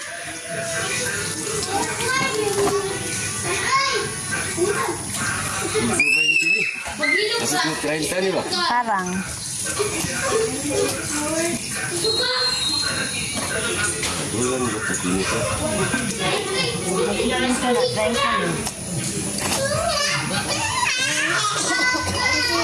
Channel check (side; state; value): both; identical; correlation 1.00